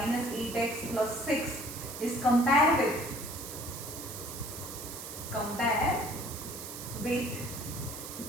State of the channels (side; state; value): right; noise; hiss, 9 dB below the sound